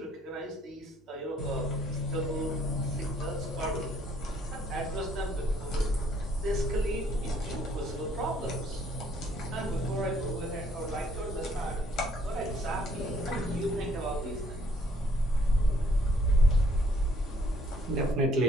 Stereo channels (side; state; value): both; normal; correlation 0.65